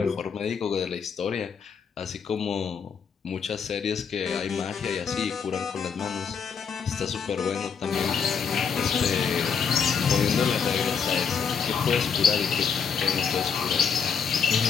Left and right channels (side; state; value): right; quieter; 6.5 dB